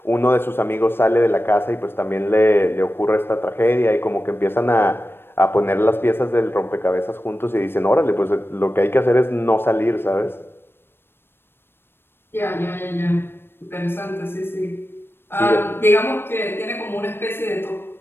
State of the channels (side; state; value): right; late; 0.11 ms